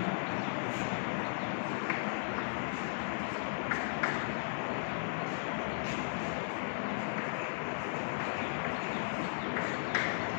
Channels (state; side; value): silent; right; digital silence